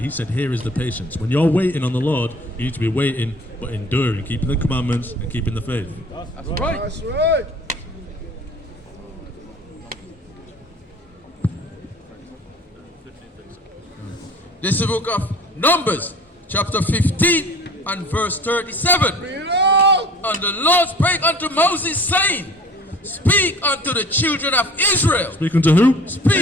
He said, here is the patience. When you're waiting on the Lord, you need to be waiting, but enduring, keeping the commandments and keeping the faith. That's right. That's right. This is the book of Numbers, chapter 15 and verse 37. And the Lord spake unto Moses, saying, speak unto the children of Israel. Speaking to who?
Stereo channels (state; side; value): normal; both; correlation 0.46